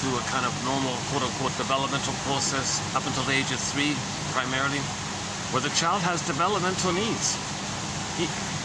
a kind of normal, quote unquote, developmental process up until the age of 3, primarily, where the child has developmental needs.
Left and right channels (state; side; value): identical; both; correlation 1.00